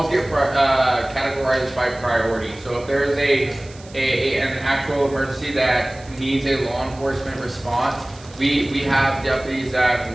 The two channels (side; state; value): right; noise; hiss, 23 dB below the sound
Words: get categorized by priority. So if there is an actual emergency that needs a law enforcement response, we have deputies that